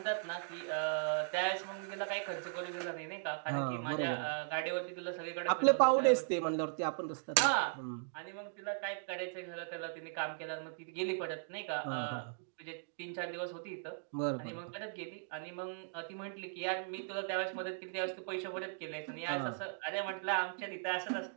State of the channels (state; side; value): silent; left; digital silence